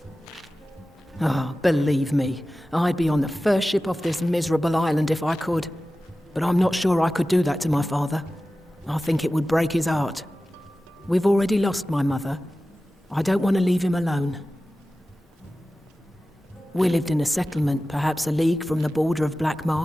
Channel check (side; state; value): both; normal; correlation 0.95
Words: Ah, believe me, I'd be on the first ship off this miserable island if I could. But I'm not sure I could do that to my father. I think it would break his heart. We've already lost my mother. I don't want to leave him alone. We lived in a settlement, perhaps a league from the border of Black